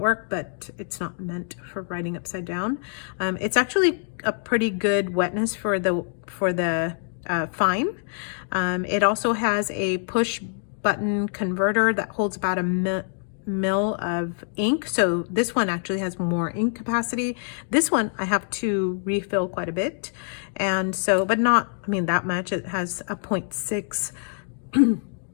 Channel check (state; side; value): silent; right; digital silence